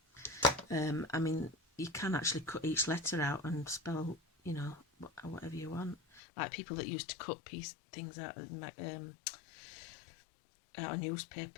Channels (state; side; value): drops out; right; at 6.2 s